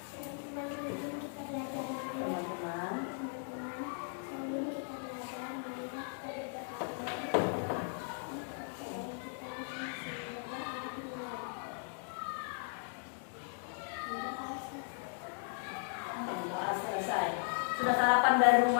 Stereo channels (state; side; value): silent; right; 53 dB below the other